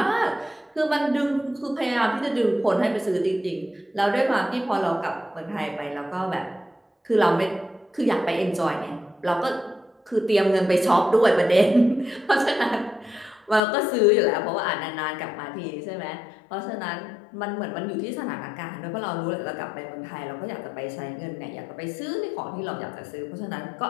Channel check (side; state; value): right; drops out; at 13.6 s